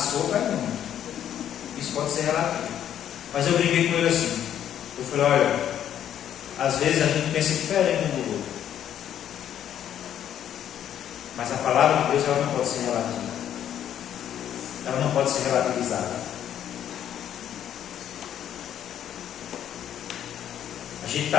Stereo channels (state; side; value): quieter; right; 10.3 dB